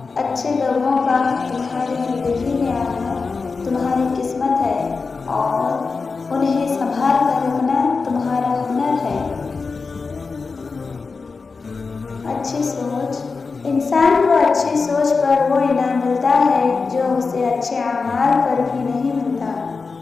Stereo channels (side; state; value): right; quieter; 4.5 dB